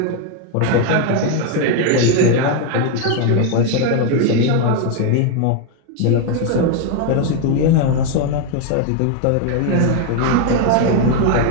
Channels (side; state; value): both; different; correlation 0.01